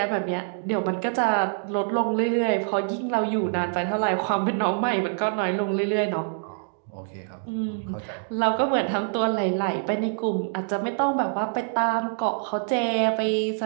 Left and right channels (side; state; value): left; silent; digital silence